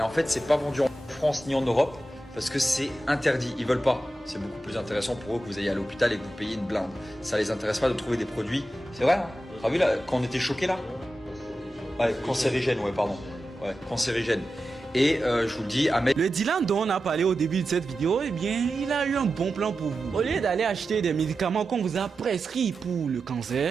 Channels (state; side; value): normal; both; correlation 0.92